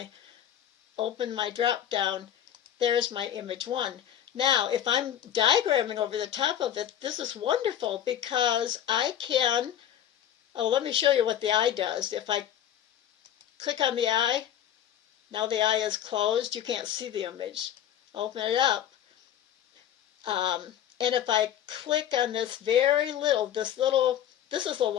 open my drop down, there's my image 1. Now, if I'm diagramming over the top of it, this is wonderful because I can, let me show you what the eye does. If I click on the eye, now the eye is closed, you can't see the image. Open it up. And if I click on this this is a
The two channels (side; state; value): right; quieter; 10.6 dB